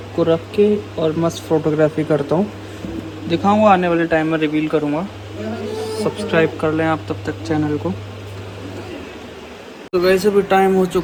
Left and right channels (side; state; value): both; identical; correlation 1.00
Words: को रख के और मस्त फ़ोटोग्राफी करता हूँ, दिखाऊँगा आने वाले टाइम में, रिवील करूँगा। सब्सक्राइब कर लें आप तब तक चैनल को। तो गाइस अभी टाइम हो